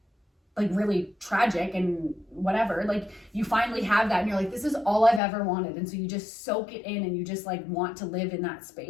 like really tragic and whatever, like you finally have that and you're like, this is all I've ever wanted. And so you just soak it in and you just like want to live in that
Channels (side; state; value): right; drops out; at 5.2 s